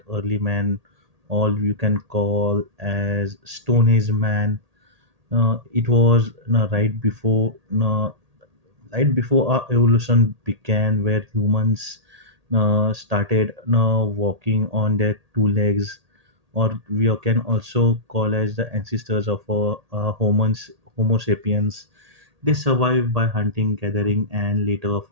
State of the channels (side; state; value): left; late; 1.8 ms